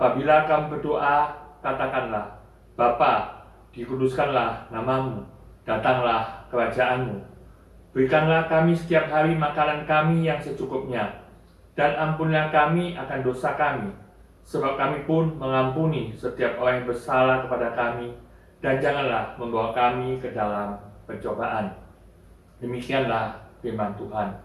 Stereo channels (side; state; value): both; identical; correlation 1.00